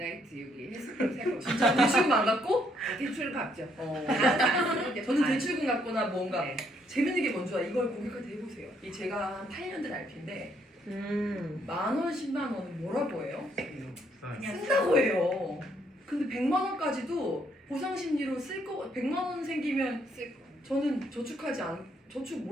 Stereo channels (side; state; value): both; normal; correlation 0.71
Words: 여기 헬스클럽 살 겁니다. 진짜 대출금 안 갚고? 대출 갚죠. 어. 안 쓰는데 저는 반. 대출금 갚거나 뭔가 네. 재밌는 게 뭔지 알아? 이걸 고객한테 해보세요. 이 제가 한 8년 된 RP인데 10,000원, 10만 원은 뭐라고 해요? 그냥 쓴다고 해요. 근데 100만 원까지도 보상 심리로 쓸 거. 100만 원 생기면 쓸 거. 저는 저축하지 않. 저축